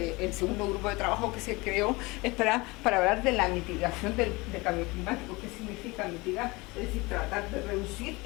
segundo grupo de trabajo que se creó es para hablar de la mitigación del cambio climático. ¿Qué significa mitigar? Es decir, tratar de reducir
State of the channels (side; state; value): right; quieter; 23.8 dB